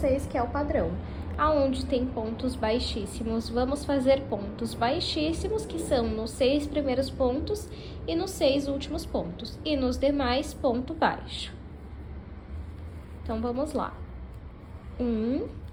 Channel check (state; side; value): identical; both; correlation 1.00